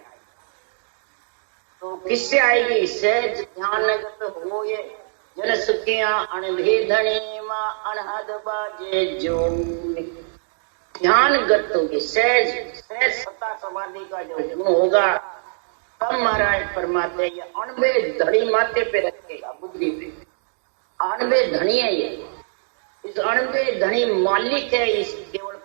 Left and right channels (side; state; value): left; silent; digital silence